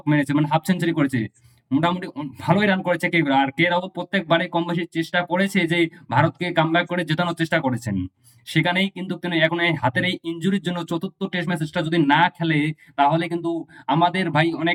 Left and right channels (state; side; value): identical; both; correlation 1.00